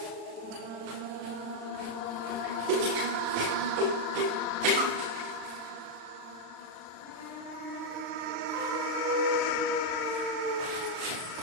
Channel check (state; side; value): late; left; 36 ms